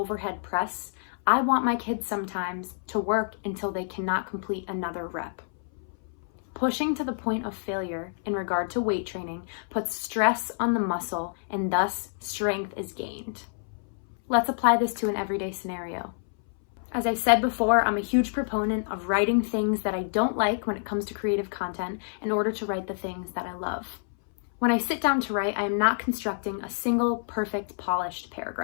press, I want my kids sometimes to work until they cannot complete another rep. Pushing to the point of failure in regard to weight training puts stress on the muscle and thus strength is gained. Let's apply this to an everyday scenario. As I said before, I'm a huge proponent of writing things that I don't like when it comes to creative content in order to write the things that I love. When I sit down to write, I am not constructing a single perfect polished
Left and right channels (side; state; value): right; silent; 60 dB below the other